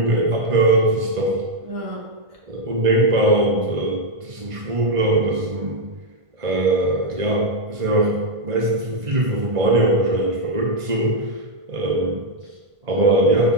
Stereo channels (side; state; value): left; late; 1.5 ms